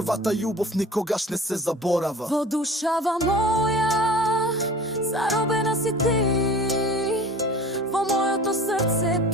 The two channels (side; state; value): both; normal; correlation 0.42